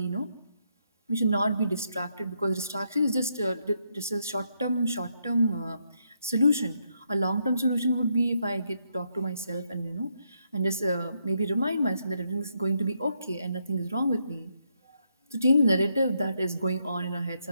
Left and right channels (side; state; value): both; inverted; correlation -0.78